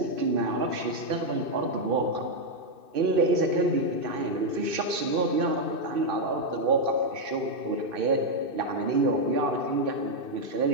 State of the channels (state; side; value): late; left; 2.6 ms